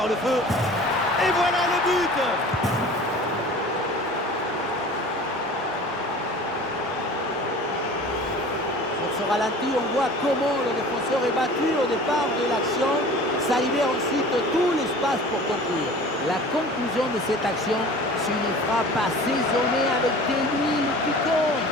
le feu. Et voilà le but. Sur ce ralenti, on voit comment le défenseur est battu au départ de l'action. Ça libère ensuite tout l'espace pour conclure. La conclusion de cette action, c'est une frappe assaisonnée avec des huiles piquantes.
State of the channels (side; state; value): both; normal; correlation 0.42